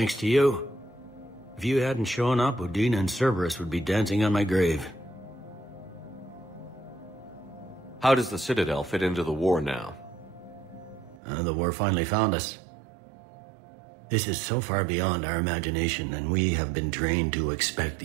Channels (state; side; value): drops out; left; at 11.2 s